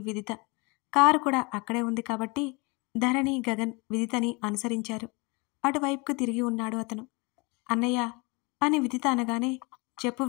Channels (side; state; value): right; quieter; 28.2 dB